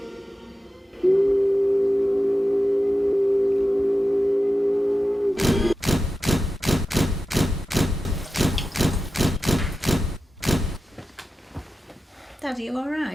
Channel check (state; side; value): normal; both; correlation 0.93